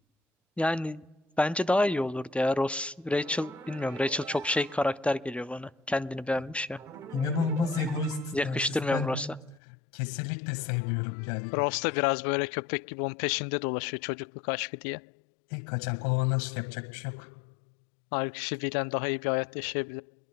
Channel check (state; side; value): drops out; right; at 9.6 s